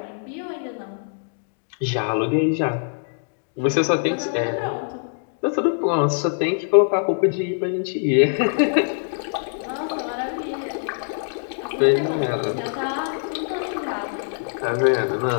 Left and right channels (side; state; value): right; silent; digital silence